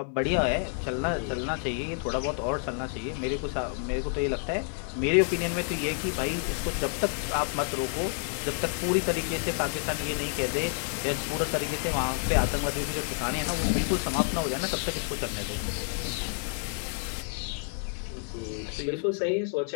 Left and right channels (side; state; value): right; silent; 58 dB below the other